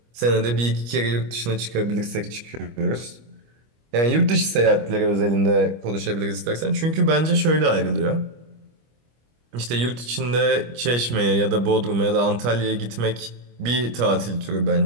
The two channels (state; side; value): late; left; 25 ms